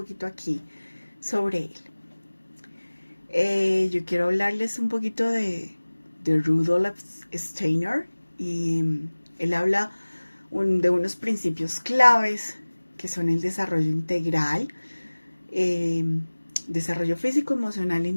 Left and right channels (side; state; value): both; inverted; correlation -1.00